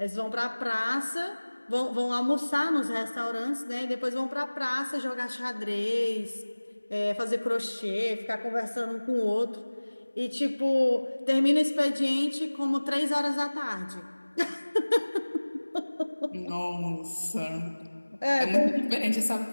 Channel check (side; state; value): both; inverted; correlation -1.00